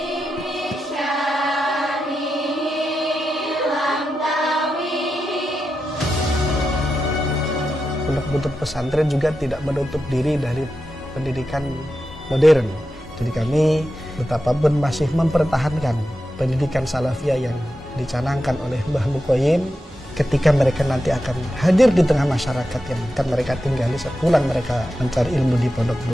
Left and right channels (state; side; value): normal; both; correlation 0.89